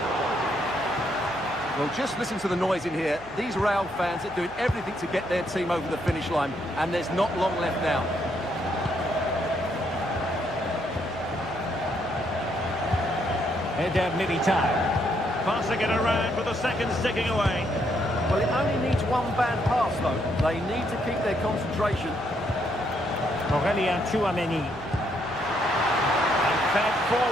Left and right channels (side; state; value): right; noise; hum, 22 dB below the sound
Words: Well, just listen to the noise in here. These Real fans are doing everything to get their team over the finish line, and there's not long left now. Eder Militao. Passing it around with the seconds ticking away. Well, it only needs one bad pass, though. They need to keep their concentration. Aurelien Tchouaméni. Fed